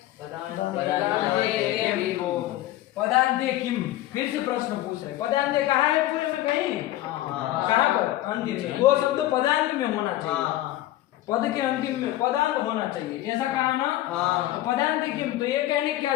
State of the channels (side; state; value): right; quieter; 15.1 dB